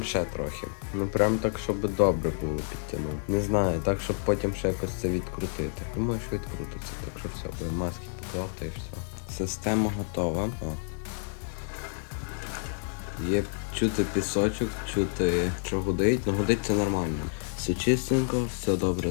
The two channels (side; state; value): right; silent; digital silence